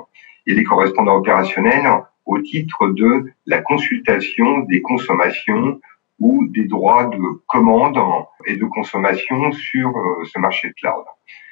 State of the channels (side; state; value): right; quieter; 16.9 dB